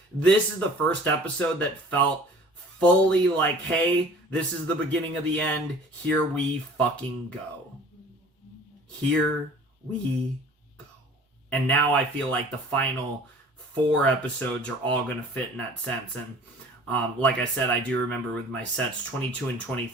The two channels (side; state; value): both; normal; correlation 0.48